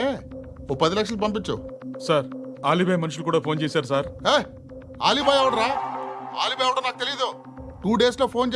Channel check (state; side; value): identical; both; correlation 1.00